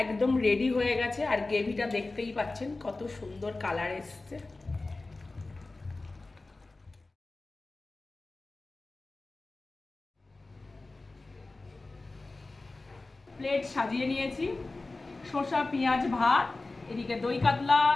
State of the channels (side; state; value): right; quieter; 3.3 dB